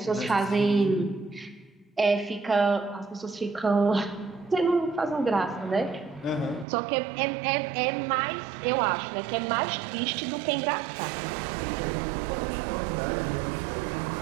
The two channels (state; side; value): drops out; left; at 6.7 s